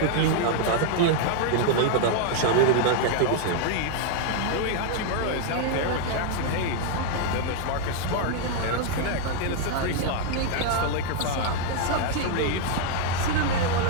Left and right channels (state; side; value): different; both; correlation 0.00